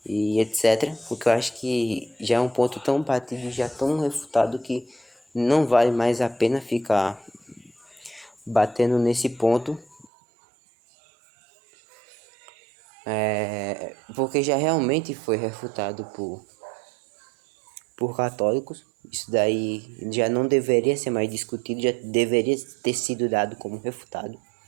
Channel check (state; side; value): drops out; left; at 10.1 s